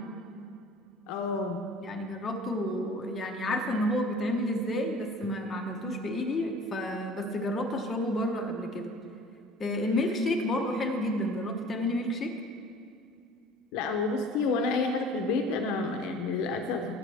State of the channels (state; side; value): normal; both; correlation 0.46